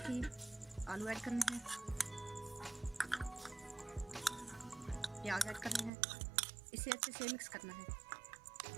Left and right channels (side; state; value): left; drops out; at 5.9 s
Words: ही आलू ऐड करने हैं, प्याज ऐड करने हैं। इसे अच्छे से मिक्स करना है।